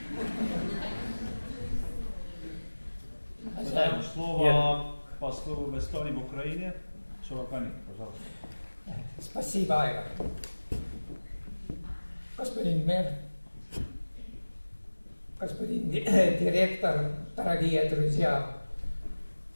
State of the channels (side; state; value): both; inverted; correlation -1.00